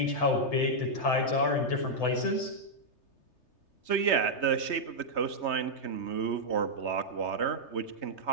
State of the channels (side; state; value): right; late; 3.3 ms